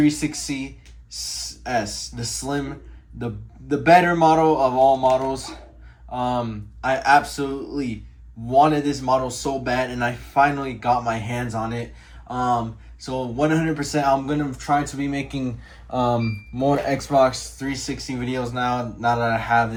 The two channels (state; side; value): identical; both; correlation 1.00